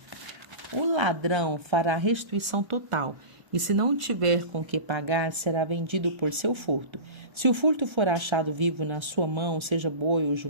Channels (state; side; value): late; left; 1.3 ms